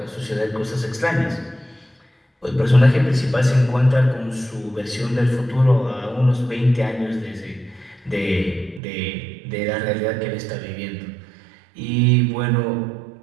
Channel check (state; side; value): drops out; left; at 8.8 s